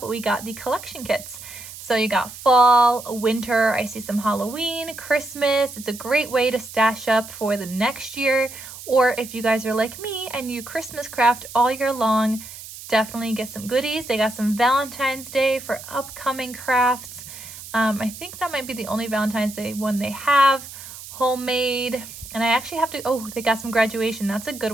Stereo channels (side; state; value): right; noise; hiss, 14 dB below the sound